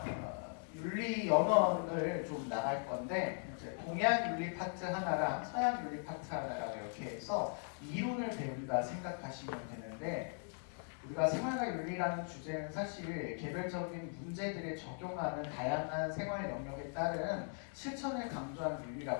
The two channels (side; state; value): right; silent; 52 dB below the other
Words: 윤리 연원을 좀 나갈 건데 이제 동양 윤리 파트 하나랑 서양 윤리 파트 하나랑 이렇게 해서 이론을 배운다 생각하시면 되는데, 우리가 생활과 윤리라는 주제는 사실 개별적인 문제들에 적용하는 다양한 생활 영역에 따른 실천을 강조한